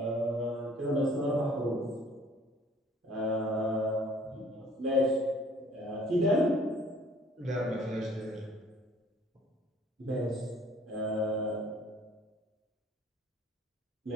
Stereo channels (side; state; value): both; normal; correlation 0.55